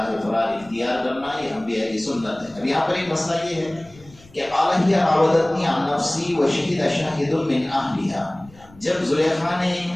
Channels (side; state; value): left; noise; rumble, 24 dB below the sound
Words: فرار اختیار کرنا، یہ انبیاء کی سنت ہے. اب یہاں پر ایک مسئلہ یہ ہے کہ قال ہی راودتنی عن نفسی وشہد شاہد من اہلہا. جب زلیخا نے